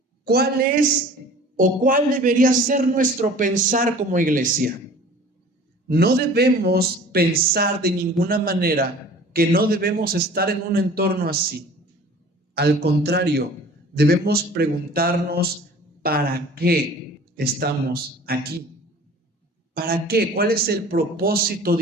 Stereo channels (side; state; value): both; normal; correlation 0.46